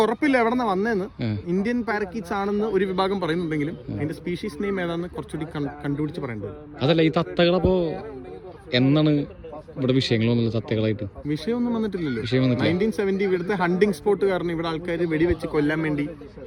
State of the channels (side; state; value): both; identical; correlation 1.00